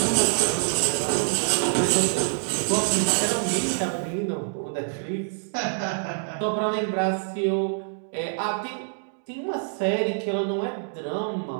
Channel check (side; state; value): left; silent; digital silence